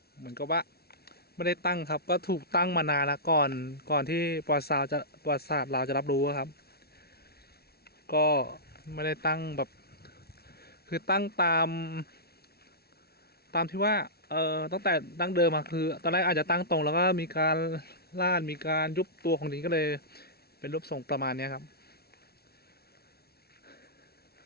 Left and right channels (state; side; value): late; right; 0.45 ms